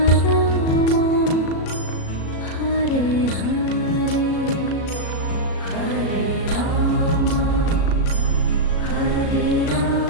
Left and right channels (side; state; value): right; late; 37 ms